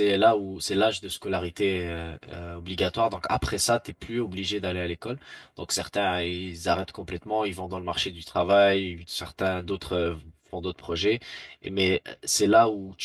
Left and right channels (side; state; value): both; identical; correlation 1.00